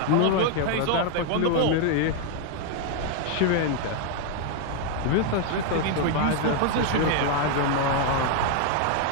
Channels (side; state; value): both; different; correlation 0.00